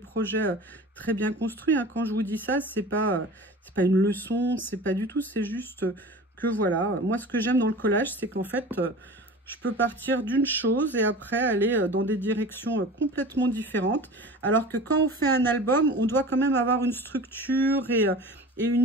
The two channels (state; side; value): normal; both; correlation 0.37